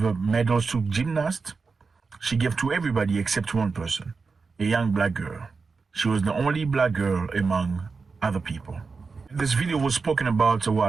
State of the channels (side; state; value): left; quieter; 4.6 dB